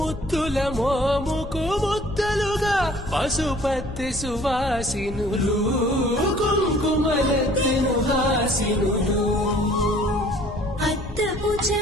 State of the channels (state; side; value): noise; left; rumble, 10 dB below the sound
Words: మోముకు ముద్దలుగా పశుపతి సువాసినులు కుంకుమలెత్తిను హాసినులు అద్దపు